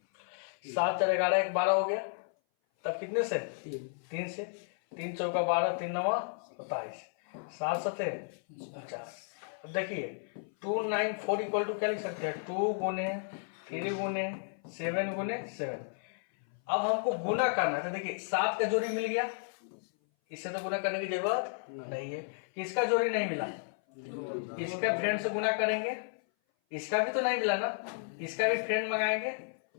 7 4 11 1 12 हो गया। तब कितने से? 3 से। 3 चौका 12, 3 9 27, 7 7 49। अब देखिए 294 इक्वल टू क्या लिख सकते हैं? 2 गुने 3 गुने 7 गुने 7। अब हमको गुना करना है। तो देखिए 7 का जोड़ी मिल गया, इससे तो गुना करने की जरूरत नहीं है। किसका जोड़ी नहीं मिला? इसका फ्रेंड से गुना करेंगे। इसका भी तो नहीं मिला ना, इसका भी फ्रेंड मंगाएंगे।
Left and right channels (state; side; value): silent; right; 56 dB below the other